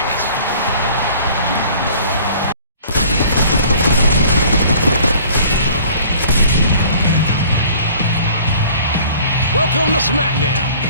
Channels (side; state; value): both; inverted; correlation -0.50